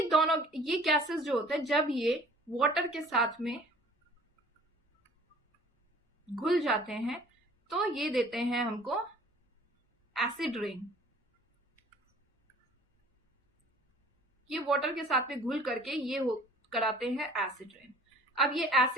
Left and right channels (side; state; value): both; normal; correlation 0.51